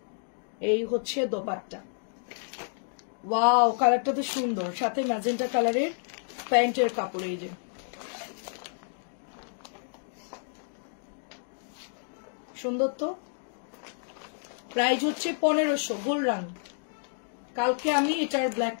এই হচ্ছে দোপাট্টা। ওয়াও কালারটা তো সুন্দর, সাথে ম্যাজেন্টা কালারের প্যান্টের কাপড়, এই যে সুন্দর তো। প্রাইস হচ্ছে 1500 গোল্ড রং। কালকে আমি এটার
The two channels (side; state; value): right; silent; digital silence